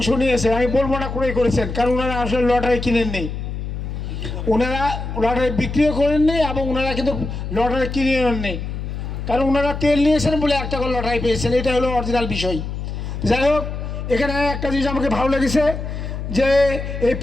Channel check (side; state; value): left; noise; hum, 6 dB below the sound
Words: নিয়েছে, আমি বলবো না ক্রয় করেছেন, কারণ ওনারা আসলে লটারি কিনেননি, ওনারা লটারি বিক্রিও করেননি এবং ওনারা কিন্তু লটারি কিনে নেননি, কারণ ওনারা তেল নিয়েছেন বলে একটা করে লটারি পেয়েছেন, এটা হলো অরিজিনাল বিষয়। যাই হোক, এখানে একটা জিনিস আমাকে ভালো লেগেছে যে এই